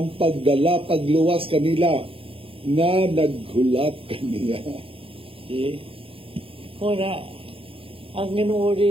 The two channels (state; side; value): late; left; 0.27 ms